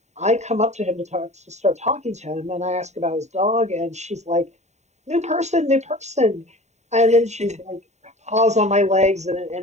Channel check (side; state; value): left; late; 0.33 ms